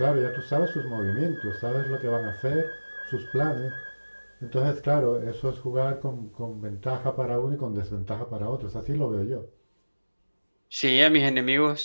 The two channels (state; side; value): inverted; both; correlation -1.00